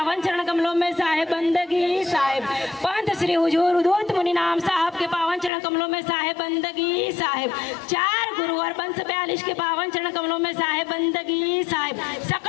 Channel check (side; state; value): right; drops out; at 5.5 s